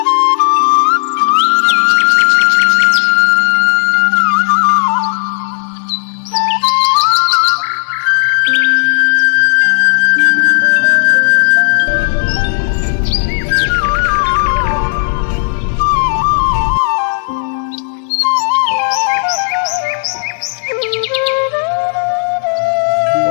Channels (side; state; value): right; silent; 70 dB below the other